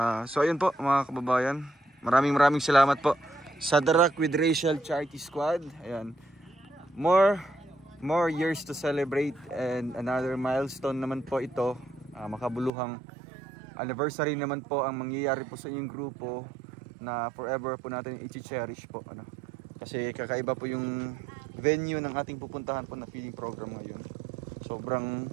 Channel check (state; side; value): drops out; left; at 12.7 s